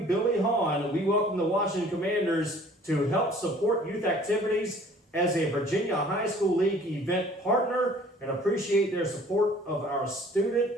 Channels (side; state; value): both; normal; correlation 0.53